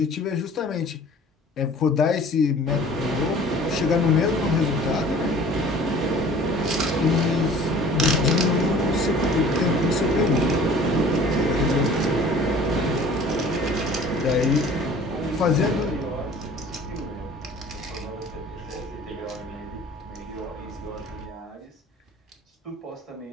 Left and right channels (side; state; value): both; normal; correlation 0.48